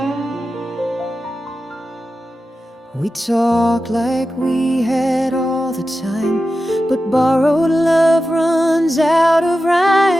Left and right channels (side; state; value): both; normal; correlation 0.92